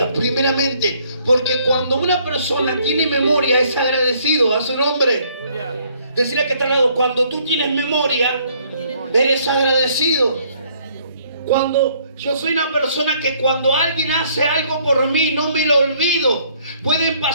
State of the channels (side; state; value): both; inverted; correlation -0.64